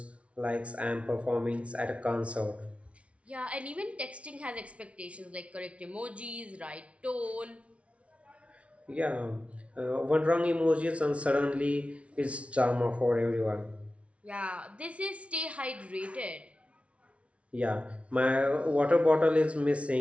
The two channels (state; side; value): late; left; 0.062 ms